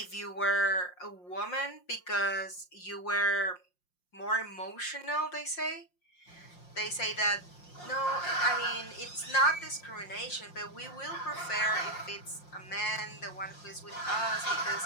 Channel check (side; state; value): right; late; 5.6 ms